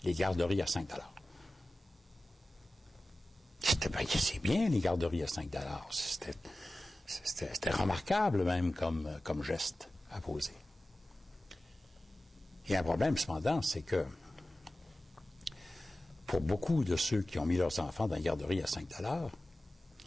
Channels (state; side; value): normal; both; correlation 0.95